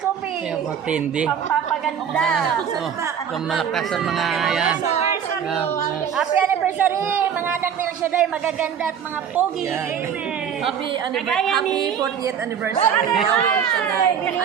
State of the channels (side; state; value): left; quieter; 8.0 dB